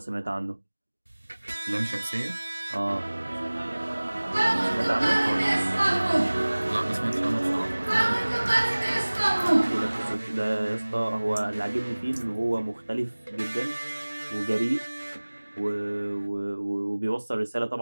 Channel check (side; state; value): both; inverted; correlation -1.00